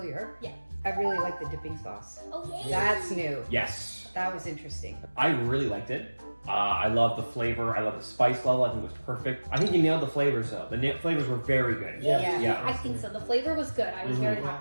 Yeah. I really like the dipping sauce. Oh, yeah. That's new. Yes. That was interesting. I really liked it. I love the flavor. I love the spice level. I think it was perfect. I think you nailed the flavors though. The flavors were very good. Yeah. Yeah. I think so. The flavor was good. I was very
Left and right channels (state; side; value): inverted; both; correlation -1.00